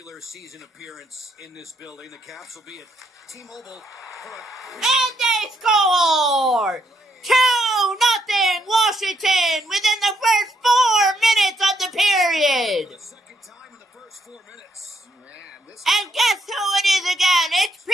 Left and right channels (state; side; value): normal; both; correlation 0.74